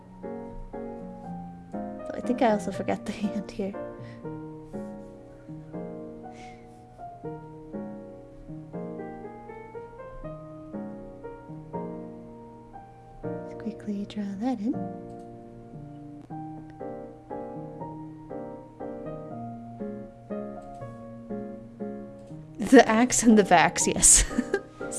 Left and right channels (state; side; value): identical; both; correlation 1.00